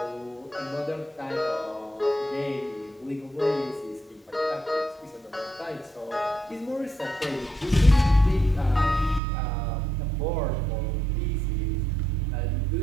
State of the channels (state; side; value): drops out; left; at 9.2 s